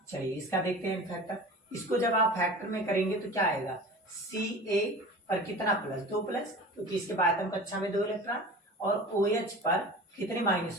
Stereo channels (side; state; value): both; normal; correlation 0.36